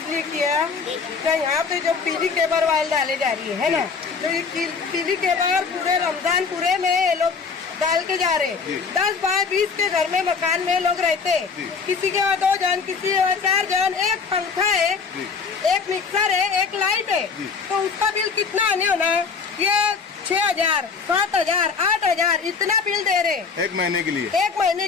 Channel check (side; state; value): right; quieter; 5.3 dB